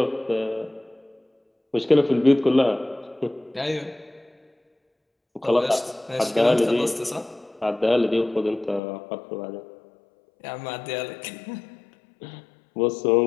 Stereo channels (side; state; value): right; drops out; at 8.8 s